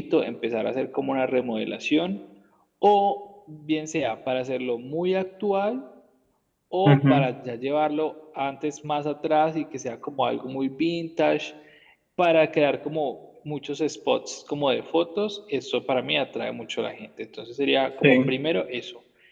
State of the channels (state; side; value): identical; both; correlation 1.00